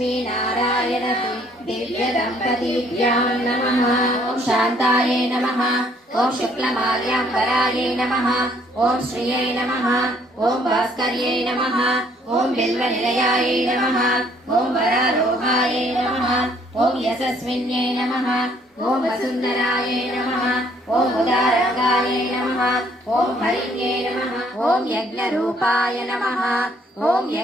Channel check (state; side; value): normal; both; correlation 0.63